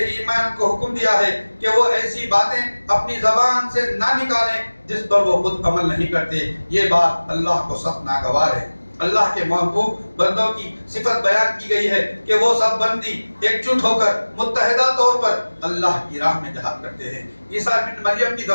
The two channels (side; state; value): both; inverted; correlation -1.00